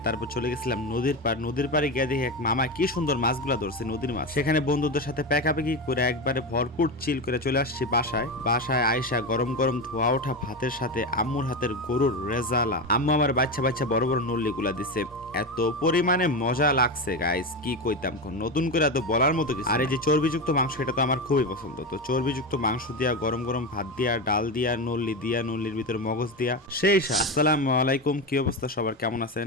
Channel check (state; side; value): normal; both; correlation 0.17